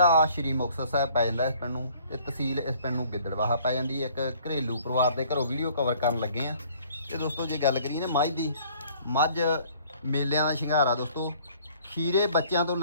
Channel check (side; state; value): both; inverted; correlation -0.56